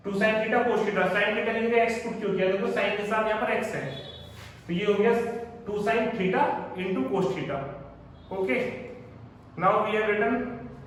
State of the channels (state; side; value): identical; both; correlation 1.00